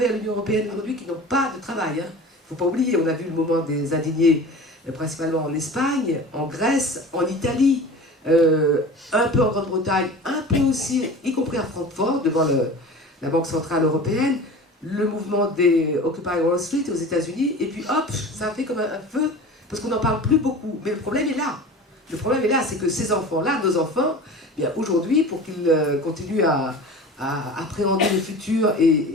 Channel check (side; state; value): both; normal; correlation 0.37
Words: l'Union européenne aujourd'hui qui n'ont pas de travail. Il ne faut pas oublier, on a vu le moment des indignés principalement en Espagne, en Grèce, en Italie, un peu en Grande-Bretagne, un peu aussi, y compris à Francfort, devant la Banque Centrale Européenne, le mouvement des Occupy Wall Street aux États-Unis, et puis hop, ça a fait comme un feu, parce qu'on n'en parle plus beaucoup. Mais le problème est là. Le problème est là, c'est que ces enfants-là, nos enfants, bien aujourd'hui, pour qu'ils continuent à appréhender le futur, et